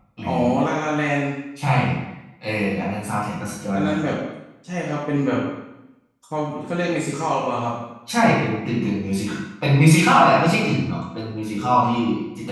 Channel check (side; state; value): both; identical; correlation 1.00